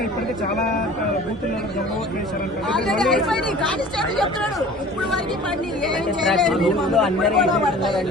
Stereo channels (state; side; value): normal; both; correlation 0.44